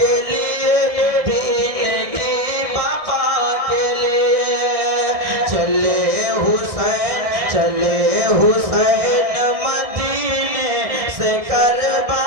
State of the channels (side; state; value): left; late; 1.6 ms